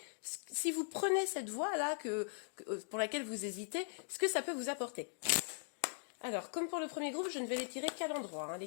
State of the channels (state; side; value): silent; right; digital silence